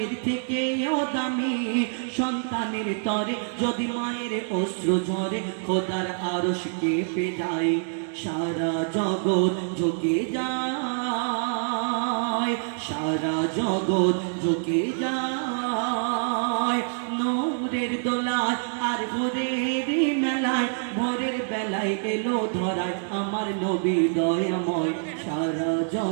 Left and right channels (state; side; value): silent; left; digital silence